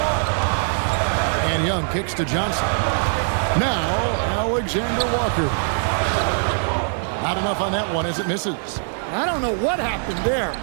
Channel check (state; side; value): silent; left; 64 dB below the other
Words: And Young kicks to Johnson. Now, Alexander Walker. Not enough on that one as it misses. I don't know what happened there.